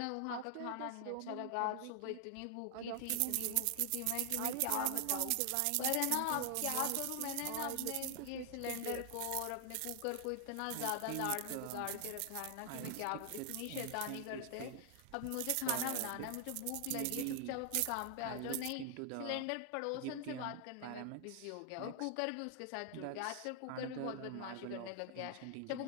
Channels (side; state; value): both; different; correlation 0.00